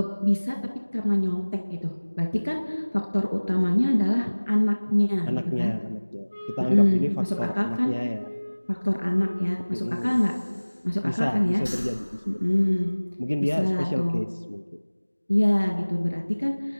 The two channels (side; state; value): both; inverted; correlation -1.00